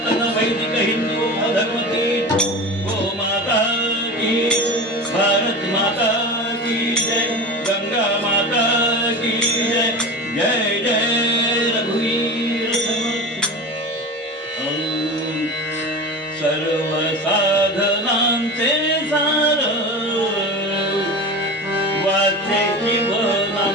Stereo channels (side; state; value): both; normal; correlation 0.30